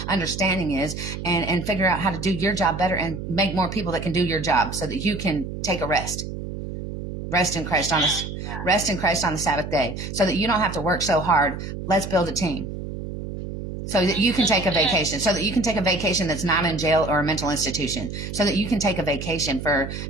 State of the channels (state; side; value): noise; right; hum, 7 dB below the sound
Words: understanding is and figure out how to do your job better and make more people that can do your job so that you can take a rest in Christ on the Sabbath day so that you don't have to work so hard. Let's build a team. So that you can take a vacation, that's not in jail or a mental institution, so that you can take a vacation for